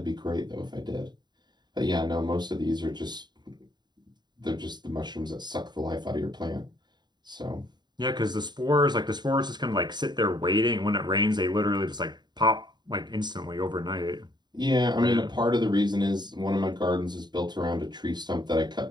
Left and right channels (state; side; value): late; left; 0.21 ms